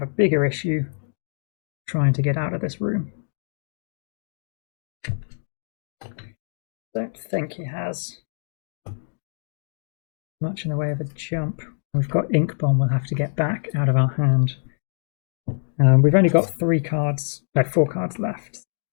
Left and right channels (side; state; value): right; silent; digital silence